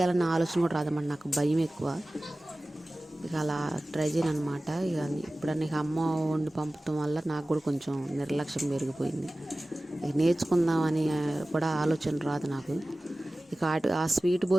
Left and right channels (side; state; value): both; normal; correlation 0.97